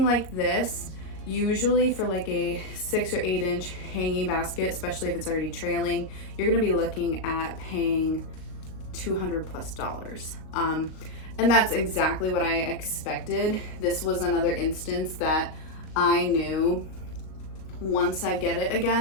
like this, usually for like a 6 or 8 inch hanging basket, especially if it's already trailing, you're gonna be looking at paying $200+. And that's exactly what I expected. This was another instance that I knew once I get it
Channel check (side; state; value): right; late; 38 ms